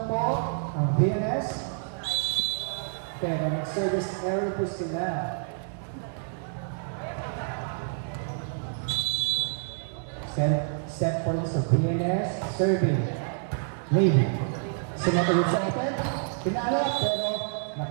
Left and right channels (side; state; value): left; silent; 56 dB below the other